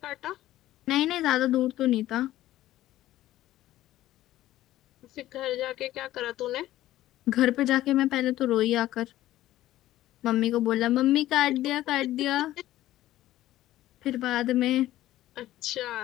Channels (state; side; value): quieter; right; 14.6 dB